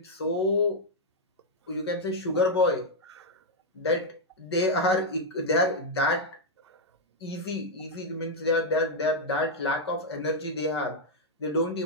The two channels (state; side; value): normal; both; correlation -0.02